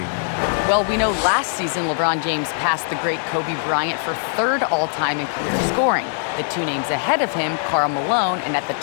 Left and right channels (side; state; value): right; silent; digital silence